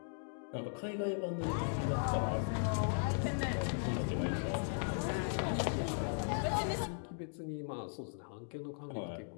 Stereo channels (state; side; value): silent; right; digital silence